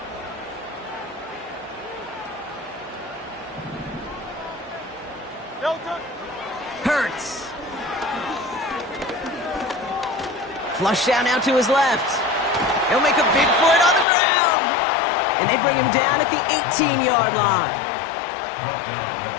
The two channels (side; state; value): right; drops out; at 14.1 s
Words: Hurts. Flush down out to his left. He'll make a bid for it on the ground. And they bring him down at the 18-yard line.